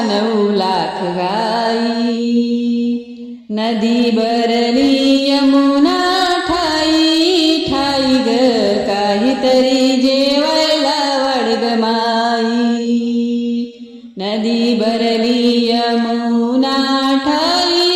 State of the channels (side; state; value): both; identical; correlation 1.00